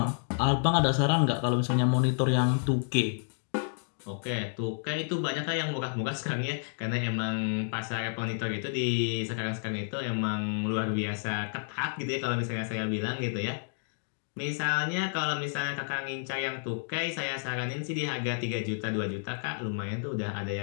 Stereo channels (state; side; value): silent; right; digital silence